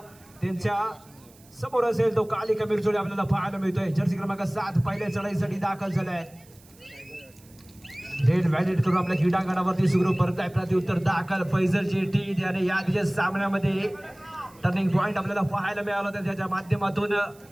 त्यांच्या समोर असेल तो कालिका बिरजोळे आपल्याला पाहायला मिळतोय. जर्सी क्रमांक 7 पहिल्या चढाईसाठी दाखल झालाय. रेड व्हॅलिड करून आपल्या क्रीडांगणावरती सुरू परत आहे. प्रत्युत्तर दाखल फैजल जेटी आणि या दिवशी सामन्यामध्ये टर्निंग पॉइंट आपल्याला पाहायला मिळाला होता. त्याच्या माध्यमातून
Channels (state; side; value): noise; right; hiss, 27 dB below the sound